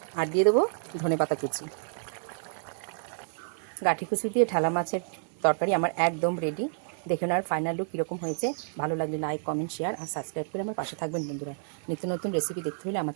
আর দিয়ে দেবো ধনেপাতা কুচি। গাঠি কুচি দিয়ে ঢালা মাছের তরকারি আমার একদম রেডি। দেখে নেওয়ার ফাইনাল লুক কীরকম হয়েছে। ভালো লাগলে লাইক, কমেন্ট, শেয়ার আর সাবস্ক্রাইব করে আমার পাশে থাকবেন বন্ধুরা। নিত্য নতুন রেসিপি দেখতে হলে আমার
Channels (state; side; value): silent; left; digital silence